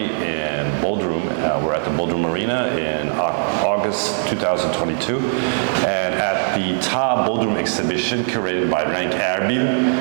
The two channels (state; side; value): silent; left; digital silence